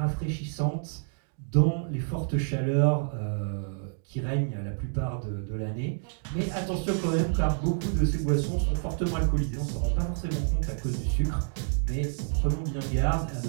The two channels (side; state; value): left; silent; digital silence